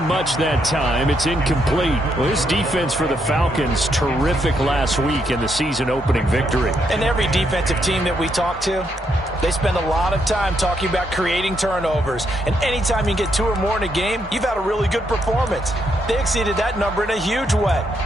much that time. It's incomplete. Well, his defense for the Falcons, terrific last week in the season-opening victory. And every defensive team that we talk to, they spend a lot of time talking about creating turnovers. And anytime you get 2 or more in a game, you've had a really good performance. They exceeded that number in a huge way.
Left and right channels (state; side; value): normal; both; correlation 0.77